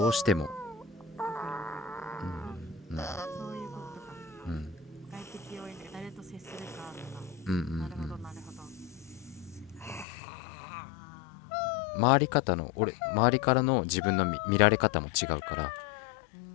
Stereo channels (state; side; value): drops out; right; at 10.1 s